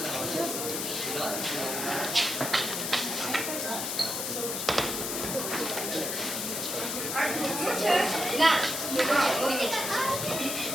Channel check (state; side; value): noise; left; hiss, 2 dB below the sound